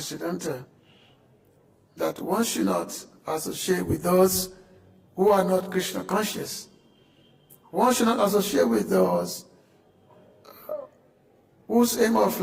that one should not associate with those who are not Krishna conscious. One should not associate with those whose aim of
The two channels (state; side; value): identical; both; correlation 1.00